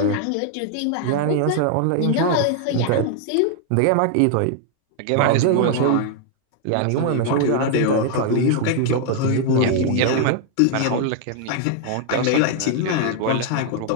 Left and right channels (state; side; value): different; both; correlation 0.00